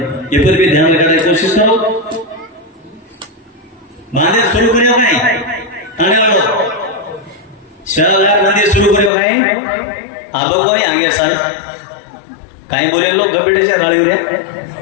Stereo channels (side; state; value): right; drops out; at 9.1 s